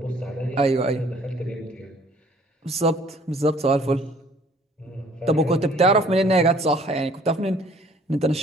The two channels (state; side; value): normal; both; correlation 0.57